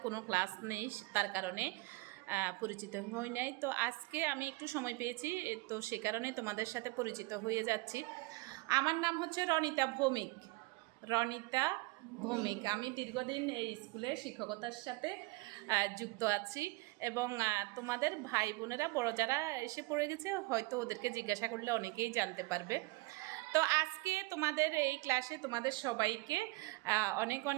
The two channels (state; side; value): quieter; left; 24.0 dB